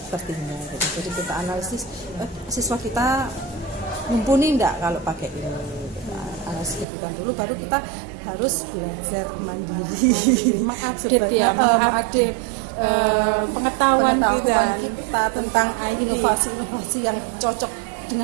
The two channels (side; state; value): left; drops out; at 6.9 s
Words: tertinggal gitu. Jadi kita analisis siswa kita mumpuni enggak kalau pakai ini, analisis kebutuhan dulu, baru kita harus belajar mandiri, mengupdate pengetahuan kita tentang inovasi yang cocok